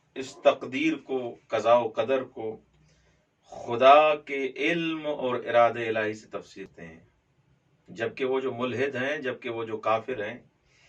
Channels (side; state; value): both; identical; correlation 1.00